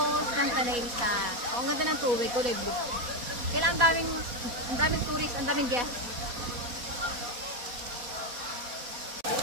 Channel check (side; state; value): left; late; 4.1 ms